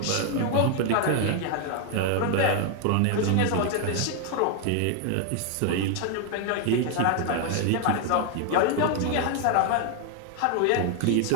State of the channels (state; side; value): different; both; correlation 0.00